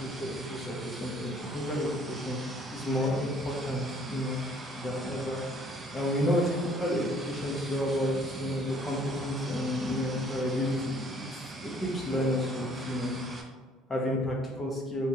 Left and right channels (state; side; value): normal; both; correlation 0.59